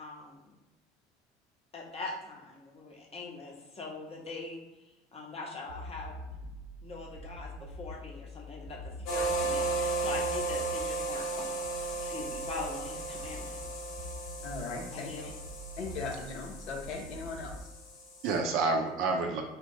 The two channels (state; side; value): normal; both; correlation 0.30